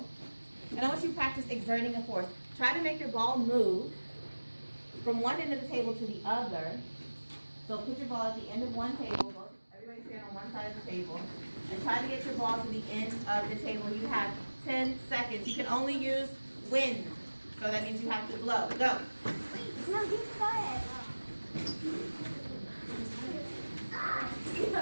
And I want you to practice exerting a force. Try to make your ball move from one end of the table to the other. So put your ball at the end of one table. Everybody stand on one side of the table. And try to get your ball to the end of the table. You have 10 seconds. You can only use wind. So that means you have to blow. Go. No, you start.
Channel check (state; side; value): inverted; both; correlation -1.00